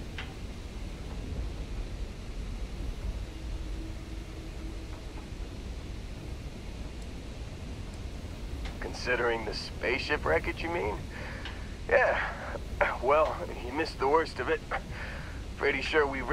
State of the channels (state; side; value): identical; both; correlation 1.00